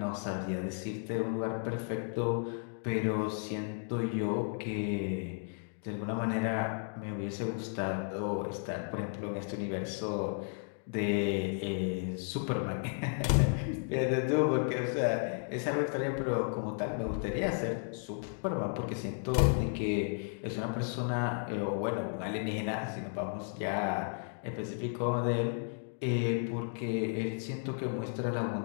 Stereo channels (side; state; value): right; silent; 55 dB below the other